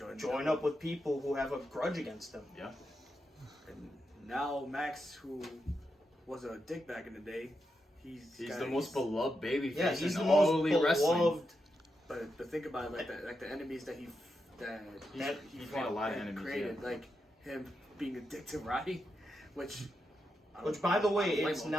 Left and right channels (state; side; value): normal; both; correlation 0.86